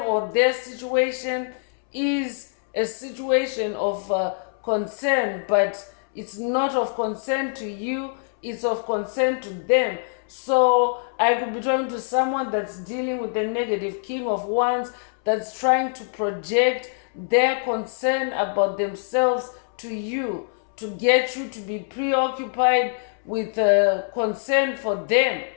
their situation is a situation of concern, but it's not of concern to you, it's of concern to them. So I could be talking to someone that's dealing with the negative king of wands, that's trying to project their concern about themselves to you, to get you to be preoccupied with concern for them,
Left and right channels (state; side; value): silent; right; 63 dB below the other